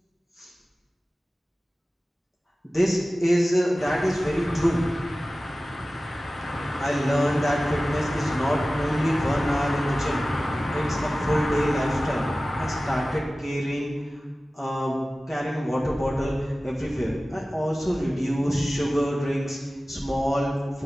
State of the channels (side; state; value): both; normal; correlation 0.96